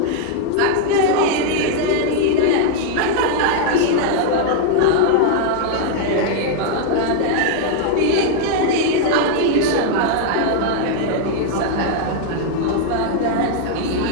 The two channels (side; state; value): both; different; correlation 0.00